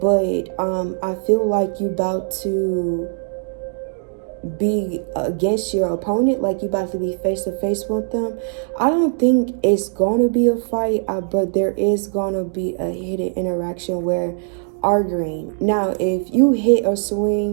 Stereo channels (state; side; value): silent; left; digital silence